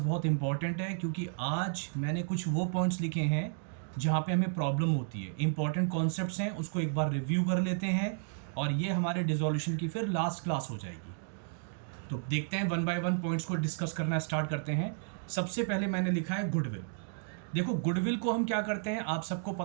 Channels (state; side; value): silent; left; digital silence